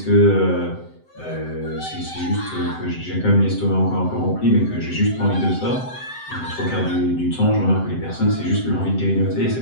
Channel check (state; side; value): late; right; 7.8 ms